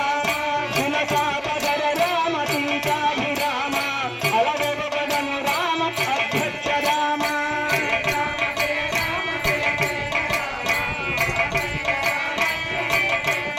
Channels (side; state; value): both; identical; correlation 1.00